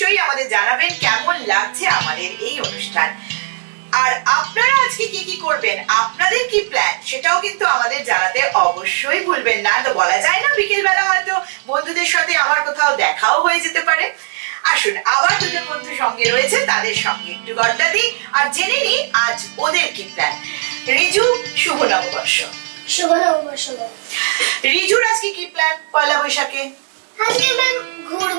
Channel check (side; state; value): left; silent; digital silence